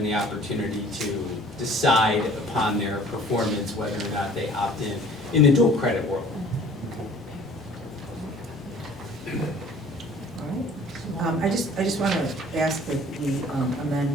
the opportunity to decide upon their performance whether or not they opt in the dual credit world. All right. I just want to ask that we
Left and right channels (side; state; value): both; normal; correlation 0.51